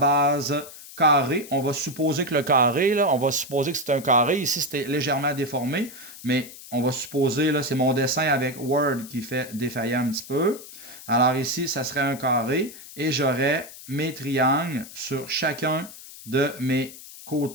carré. On va supposer que le carré, là, on va supposer que c'est un carré. Ici, c'était légèrement déformé, mais on va supposer, là, c'est mon dessin avec Word qui fait défailler un petit peu. Alors ici, ça serait un carré et j'aurais mes triangles sur chacun de mes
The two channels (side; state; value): left; noise; hiss, 16 dB below the sound